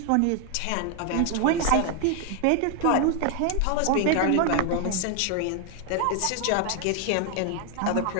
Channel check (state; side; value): different; both; correlation 0.00